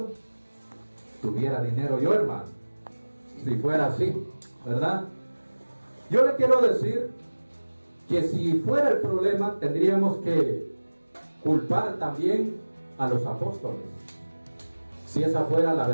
Tuviera dinero yo, hermano, si fuera así, ¿verdad? Yo le quiero decir que si fuera el problema, tendríamos que culpar también a los apóstoles, si esa fuera la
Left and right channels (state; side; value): inverted; both; correlation -1.00